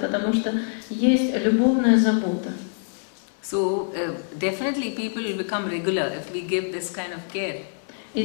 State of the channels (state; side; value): silent; right; 62 dB below the other